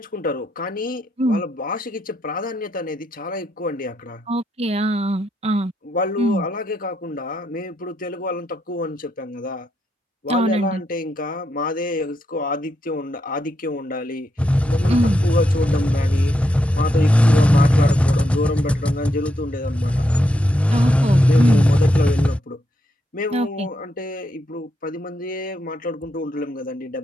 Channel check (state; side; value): normal; both; correlation 0.81